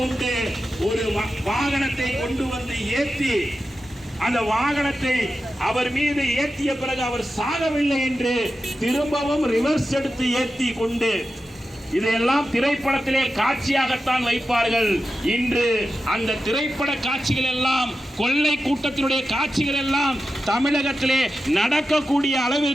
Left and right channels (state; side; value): normal; both; correlation 0.92